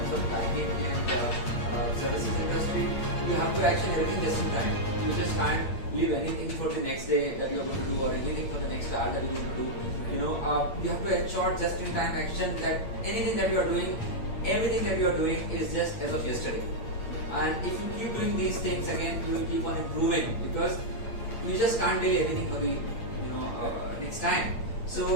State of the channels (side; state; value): right; late; 8.7 ms